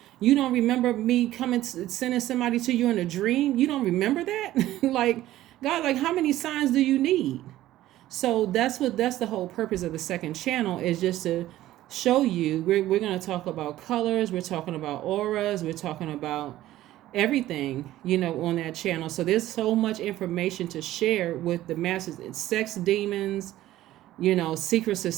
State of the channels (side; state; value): left; quieter; 14.6 dB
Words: You don't remember me sending somebody to you in a dream? You don't remember that? Like, God, like how many signs do you need? So that's the whole purpose of the second channel, is just to show you. We're going to talk about colors. We're talking about auras. We're talking about everything, on that channel. So there's so much information to share with the masses. It's sex demons, secret